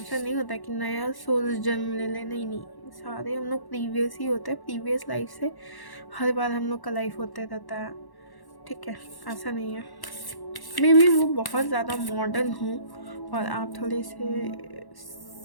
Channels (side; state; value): right; late; 1.1 ms